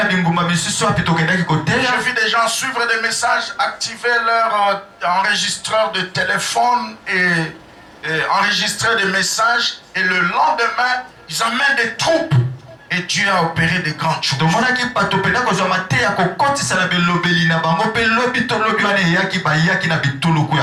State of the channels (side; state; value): both; identical; correlation 1.00